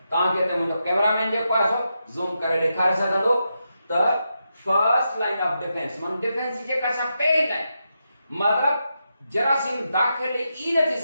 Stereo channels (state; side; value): inverted; both; correlation -0.86